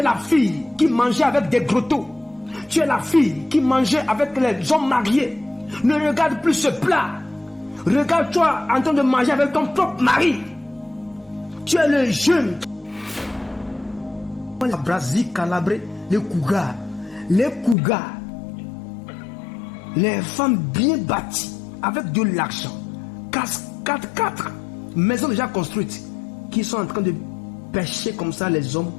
la fille qui mangeait avec des grottos. Tu es la fille qui mangeait avec les hommes mariés. Ne regarde plus ce plat. Regarde-toi en train de manger avec ton propre mari. Tu es le jeune. La Brasie calabrée, les Kougas. Les femmes bien bâties, avec de l'argent. 4 maisons déjà construites, qui sont en train de pêcher comme ça les hommes,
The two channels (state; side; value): drops out; right; at 17.8 s